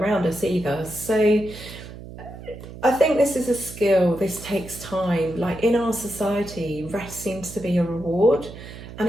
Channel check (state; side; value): noise; right; hum, 14 dB below the sound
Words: us either. So I think this is a skill, this takes time. Like in our society, rest seems to be a reward, and